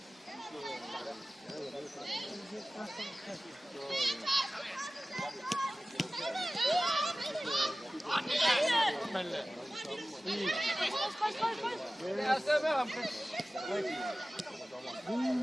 Jeg ser med ham. Kom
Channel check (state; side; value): normal; both; correlation 0.97